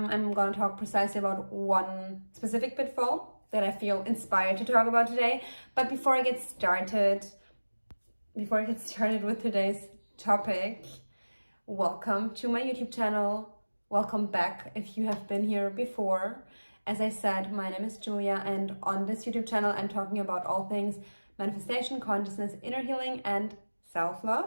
going to talk precisely about one specific pitfall that I feel inspired to talk about today. But before I get started with today's topic, welcome to my YouTube channel. Welcome back if you have been here before. As I said, my name is Julia, and on this YouTube channel, I'm talking about all things manifestation, consciousness, inner healing, and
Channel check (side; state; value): both; inverted; correlation -1.00